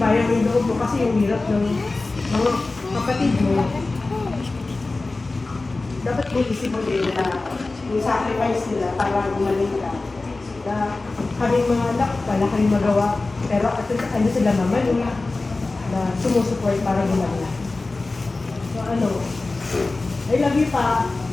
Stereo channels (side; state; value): right; quieter; 3.4 dB